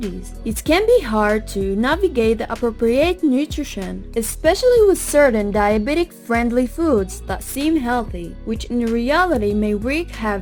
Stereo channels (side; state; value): both; identical; correlation 1.00